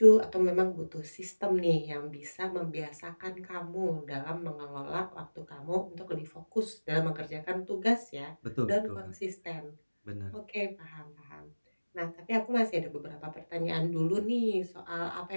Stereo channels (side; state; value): both; inverted; correlation -1.00